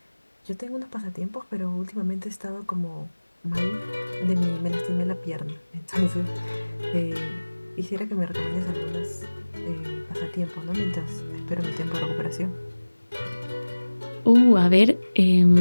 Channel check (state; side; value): inverted; both; correlation -1.00